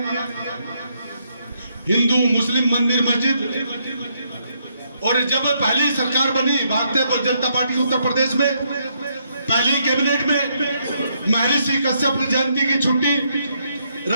हिंदू मुस्लिम मंदिर मस्जिद, और जब पहली सरकार बनी भारतीय जनता पार्टी की उत्तर प्रदेश में, पहली कैबिनेट में महर्षि कश्यप जयंती की छुट्टी,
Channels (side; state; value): both; inverted; correlation -0.75